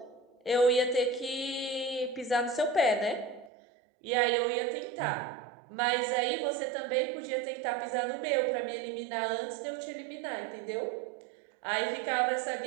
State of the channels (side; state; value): left; drops out; at 3.5 s